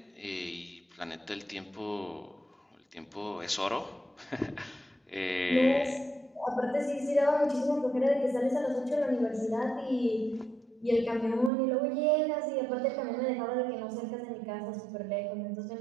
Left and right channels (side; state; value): left; drops out; at 11.5 s